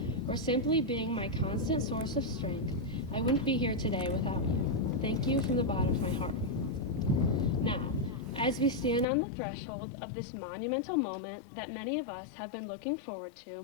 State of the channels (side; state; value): right; drops out; at 9.1 s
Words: or simply being my constant source of strength, I wouldn't be here today without you. Thank you from the bottom of my heart. Now, as we stand on the threshold of this monumental moment that many of us have been looking forward